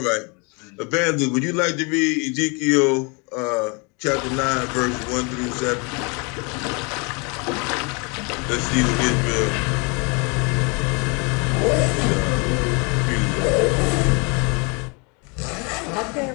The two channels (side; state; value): right; quieter; 31.9 dB